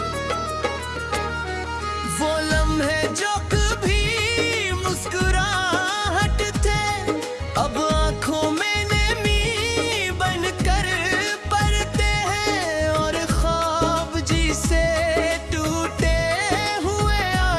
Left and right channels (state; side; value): identical; both; correlation 1.00